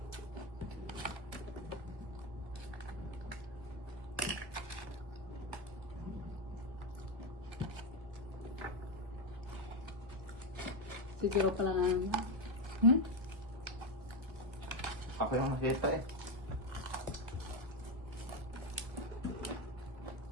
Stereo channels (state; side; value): late; left; 1.4 ms